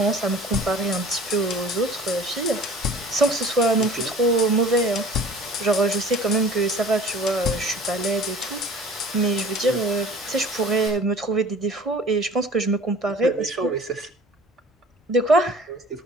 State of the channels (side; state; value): both; normal; correlation 0.46